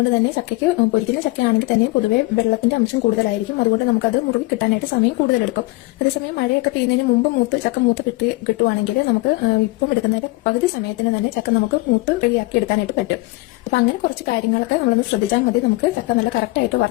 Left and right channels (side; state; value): right; quieter; 22.1 dB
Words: തന്നെ ചക്കയ്ക്ക് പൊരിക്കുന്ന ചക്കയാണെങ്കിൽ തന്നെ പൊതുവെ വെള്ളത്തിന്റെ അംശം കൂടുതലായിരിക്കും. അതുകൊണ്ട് നമുക്കത് മുറുകി കിട്ടാനായിട്ട് സമയം കൂടുതലെടുക്കും. അതേസമയം മഴയൊക്കെ പെയ്യുന്നതിന് മുമ്പ് ചക്ക മൂത്ത് കിട്ടുവാണെങ്കിൽ നമുക്ക് ഇപ്പം എടുക്കുന്നതിന്റെ പകുതി സമയത്തിന് തന്നെ ചക്ക നമുക്ക് മൂത്ത് റെഡിയാക്കി എടുക്കാനായിട്ട് പറ്റും. അപ്പൊ അങ്ങനെ കുറച്ച് കാര്യങ്ങളൊക്കെ നമ്മളൊന്ന് ശ്രദ്ധിച്ചാൽ മതി. നമുക്ക് ചക്ക നല്ല കറക്റ്റായിട്ട്